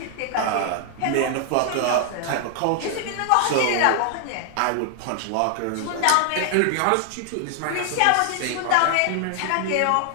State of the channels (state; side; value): different; both; correlation 0.00